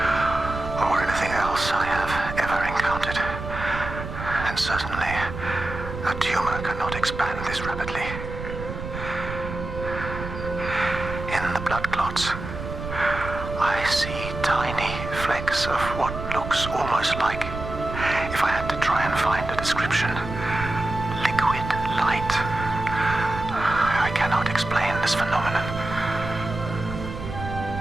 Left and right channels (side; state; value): right; noise; rumble, 8 dB below the sound